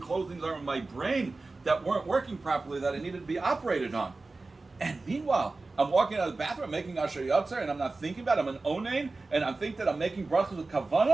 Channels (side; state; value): left; quieter; 3.5 dB